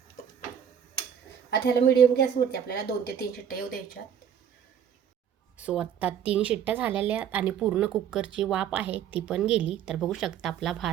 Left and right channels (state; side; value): quieter; left; 8.6 dB